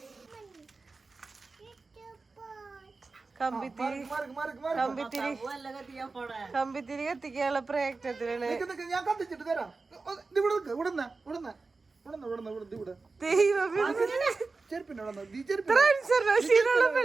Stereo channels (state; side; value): quieter; left; 3.9 dB